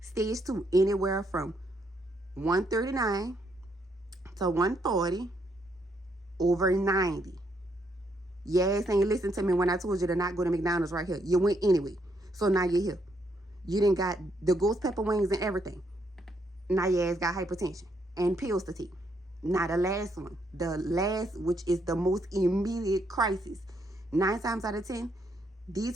Stage 2, anywhere from 139 to 140 over 90. Your ass ain't listen to me when I told you to not go to McDonald's right here. You went anyway. So now you're here. You done got the ghost pepper wings and everything. Now your ass got hypertension and pills to take. Now the last one. The last, which is the most immediate crisis. 9 times out of 10,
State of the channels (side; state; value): both; normal; correlation 0.75